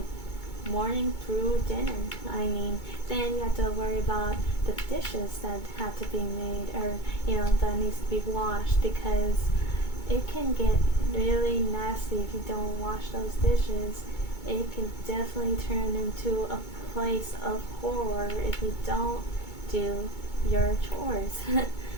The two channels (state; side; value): late; right; 2.2 ms